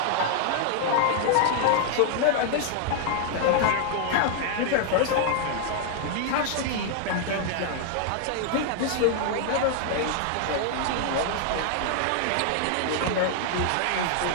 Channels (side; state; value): both; different; correlation 0.00